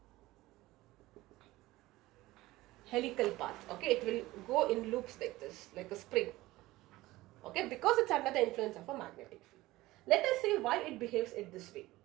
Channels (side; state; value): left; quieter; 18.2 dB